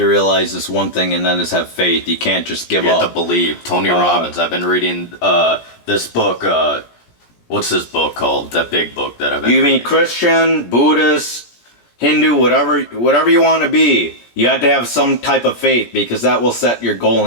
realize this one thing, and that is have faith. You can't just give up. You have to believe. Tony Robbins. I've been reading this book. What's this book called? That big book that I've been reading. You mean Christian, Buddhist, Hindu, whatever you want to be. You have to have some type of faith because that will set your goal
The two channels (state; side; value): late; right; 17 ms